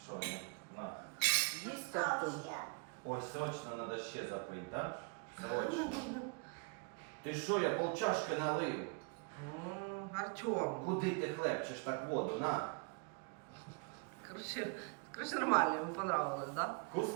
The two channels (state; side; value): quieter; left; 33.7 dB